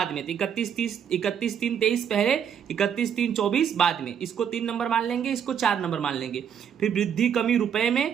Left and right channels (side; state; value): left; quieter; 8.2 dB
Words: में। तो 31/3/23 पहले, 31/3/24 बाद में। इसको 3 नंबर मान लेंगे, इसको 4 नंबर मान लेंगे। फिर वृद्धि कमी रुपए